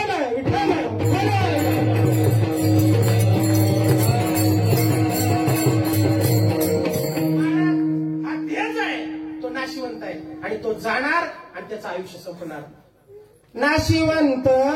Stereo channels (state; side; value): identical; both; correlation 1.00